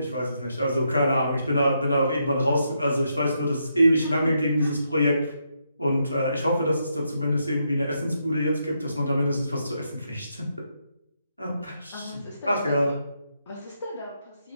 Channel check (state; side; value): inverted; both; correlation -0.80